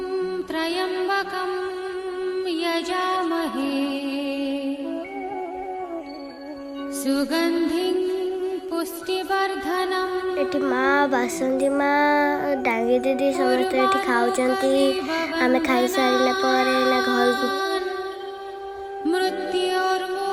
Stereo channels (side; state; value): both; identical; correlation 1.00